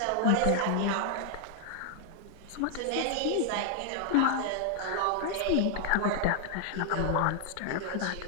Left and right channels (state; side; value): different; both; correlation 0.00